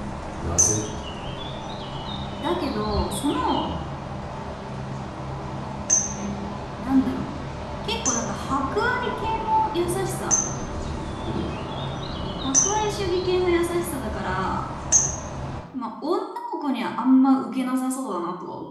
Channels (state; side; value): identical; both; correlation 1.00